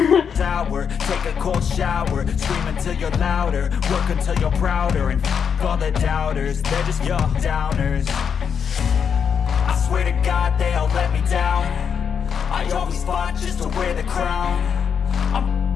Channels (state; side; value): quieter; right; 7.1 dB